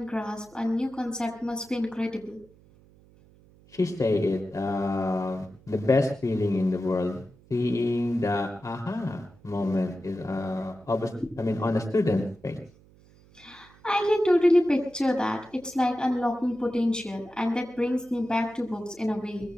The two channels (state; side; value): noise; right; hum, 27 dB below the sound